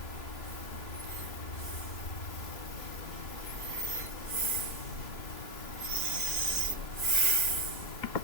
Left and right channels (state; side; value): late; right; 3.2 ms